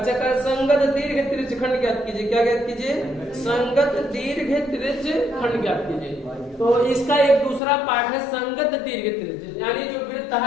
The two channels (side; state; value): right; drops out; at 7.6 s